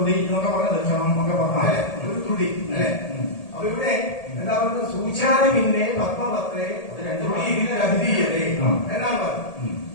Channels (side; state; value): right; late; 1.8 ms